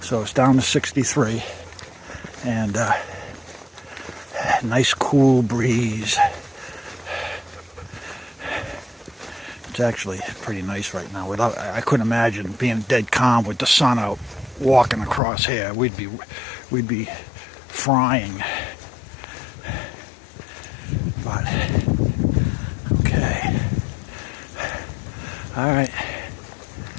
so it's down to 63, and nice cool breeze. It's actually pretty nice right now. I couldn't imagine being dead calm with the sun out, walking across here. We'd be frying. But okay. All right.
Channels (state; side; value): drops out; right; at 15.2 s